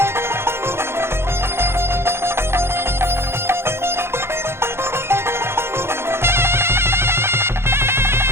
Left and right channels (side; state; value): left; late; 0.12 ms